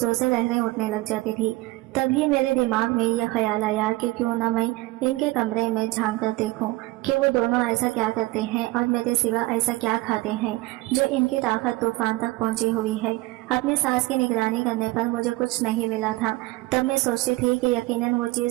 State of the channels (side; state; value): left; quieter; 20.3 dB